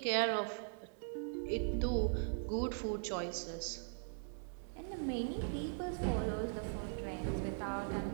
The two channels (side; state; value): left; silent; 51 dB below the other